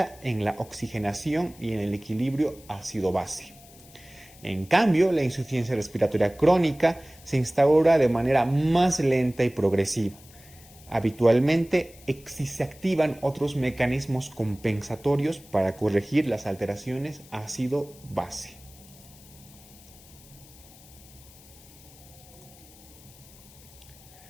en la oxigenación y en el equilibrio ácido-base. En cambio, la insuficiencia respiratoria crónica se instaura de manera más lenta y progresiva. Habitualmente se activan otros mecanismos compensatorios para corregir las alteraciones ácido-base.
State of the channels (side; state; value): left; noise; hiss, 23 dB below the sound